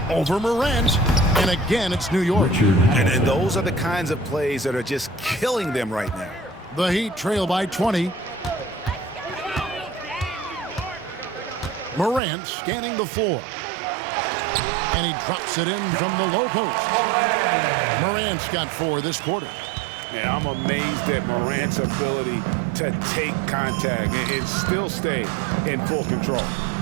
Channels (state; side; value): drops out; left; at 12.2 s